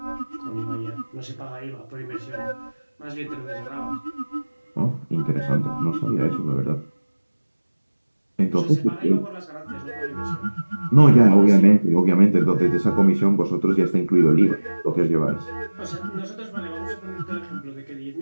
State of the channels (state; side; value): inverted; both; correlation -1.00